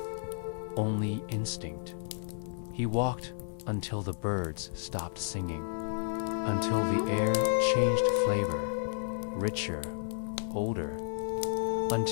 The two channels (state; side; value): silent; right; 56 dB below the other